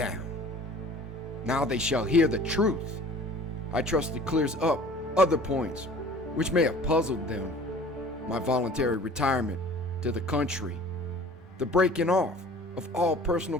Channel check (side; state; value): both; normal; correlation 0.47